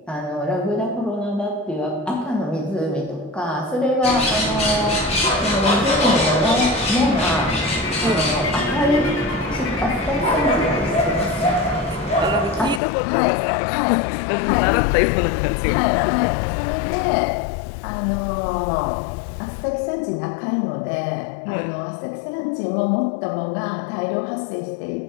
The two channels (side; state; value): right; drops out; at 12.8 s